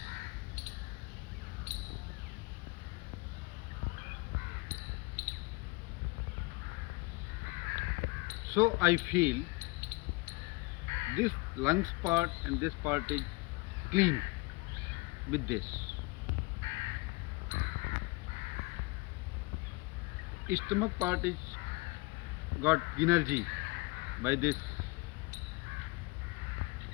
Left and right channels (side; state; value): right; quieter; 24.8 dB